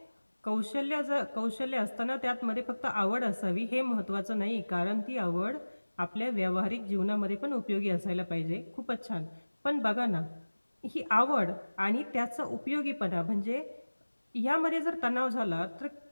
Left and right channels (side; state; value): both; inverted; correlation -1.00